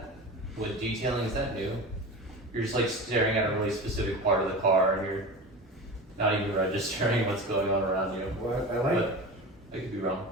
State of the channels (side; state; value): both; normal; correlation 0.30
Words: with detailing, is that new? You're just like staring at a really specific part of the car and you're not even registering what's going on around you. What I like. But I could be wrong.